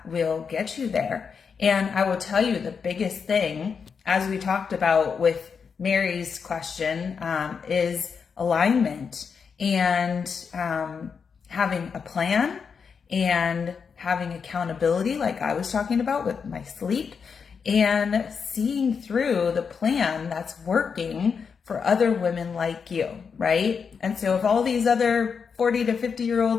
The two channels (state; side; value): quieter; right; 6.0 dB